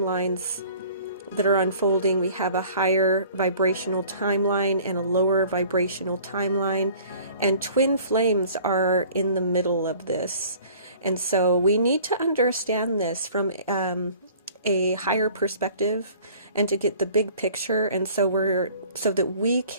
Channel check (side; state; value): both; inverted; correlation -0.49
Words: that are unfolding. We have a higher vibrational timeline and a lower vibrational timeline, and twin flames are in the middle of this. And so we need to understand this from a higher perspective and to get the big picture, and so that we